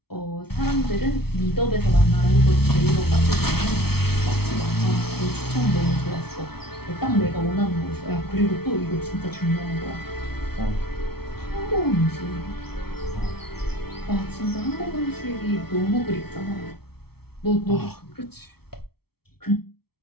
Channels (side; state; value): right; late; 0.95 ms